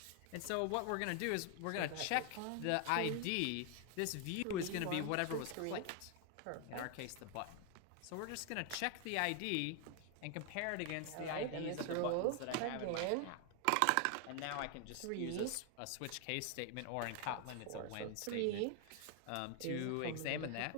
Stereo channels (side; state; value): both; different; correlation 0.00